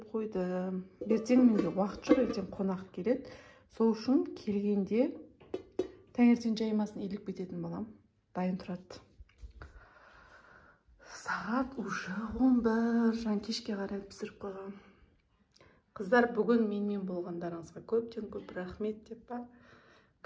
қойдым. Ертең менде уақыт жоқ, ертең қонақ келеді. Сол үшін келгенде таңертең жаймасын илік бететін балам. Дайын тұрады. Сағат уже 11, жан кешке қарай пісіріп қойғам. Қыздар, бүгін менімен болғандарыңызға көптен көп рахмет деп па.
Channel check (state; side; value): identical; both; correlation 1.00